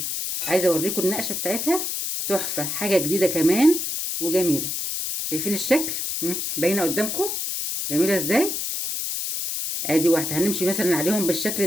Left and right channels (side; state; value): left; noise; hiss, 3 dB below the sound